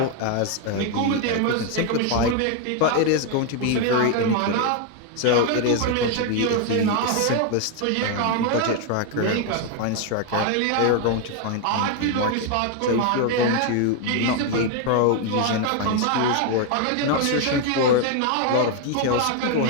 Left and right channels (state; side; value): different; both; correlation 0.01